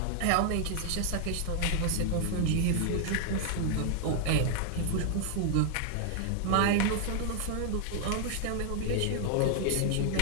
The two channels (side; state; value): both; different; correlation 0.00